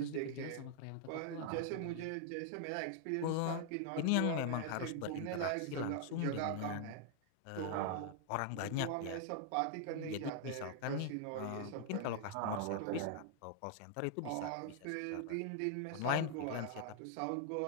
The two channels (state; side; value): different; both; correlation -0.01